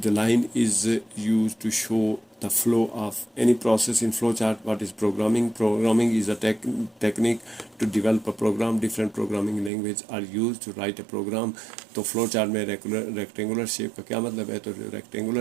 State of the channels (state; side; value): drops out; left; at 9.7 s